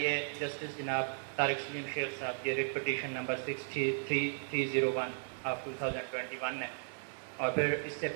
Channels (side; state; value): left; silent; 54 dB below the other